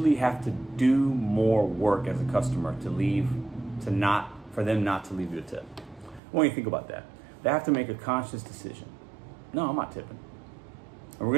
have to do more work as a customer for them not to leave you a tip. I want you to think about that. They have to make a conscious decision. No, I'm not tipping.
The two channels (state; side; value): drops out; left; at 6.2 s